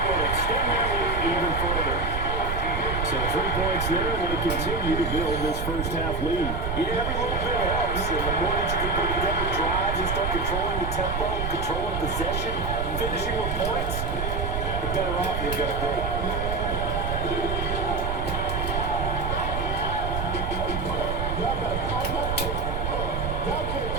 will extend their lead even further. So 3 points there, and they continue to build this first half lead. Yeah, every little bit helps. And the more that you can put together drives and start controlling the tempo, controlling possession, finishing with points, the better off you're going to be.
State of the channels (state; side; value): noise; right; rumble, 2 dB below the sound